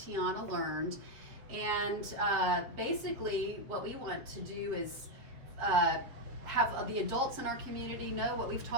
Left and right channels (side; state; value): left; late; 7.4 ms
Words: learned. And basically what we want to do is have the adults in our community know what we've